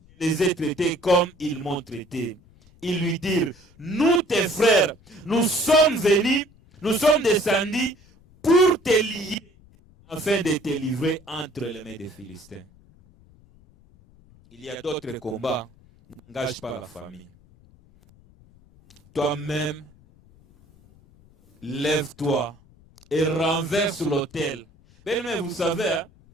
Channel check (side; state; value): left; noise; rumble, 27 dB below the sound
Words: je les ai traités comme ils m'ont traité. Ils lui dirent, nous tes frères, nous sommes venus, nous sommes descendus pour te lier, afin de te livrer entre les mains des Philistins. Il y a d'autres combats, n'engage pas la famille. Toi-même, lève-toi et renverse l'autel. Mais vous savez, hein,